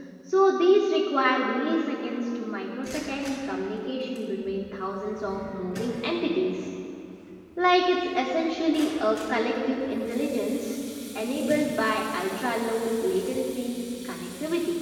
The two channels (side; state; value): both; identical; correlation 1.00